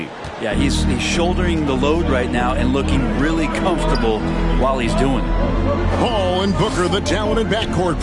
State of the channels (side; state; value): both; identical; correlation 1.00